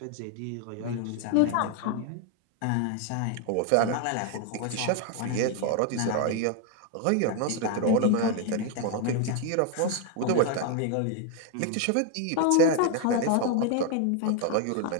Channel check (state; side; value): different; both; correlation 0.01